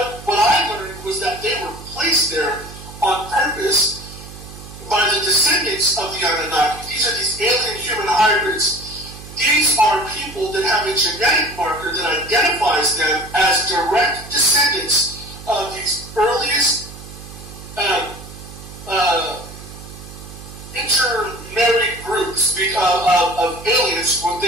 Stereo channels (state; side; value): noise; right; hum, 15 dB below the sound